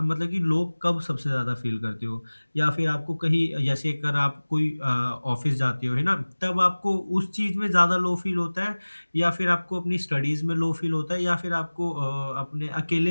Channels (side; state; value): both; inverted; correlation -1.00